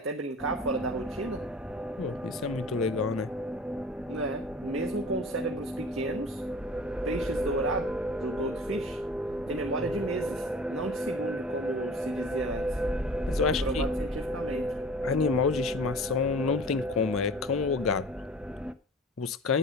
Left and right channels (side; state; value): both; normal; correlation 0.42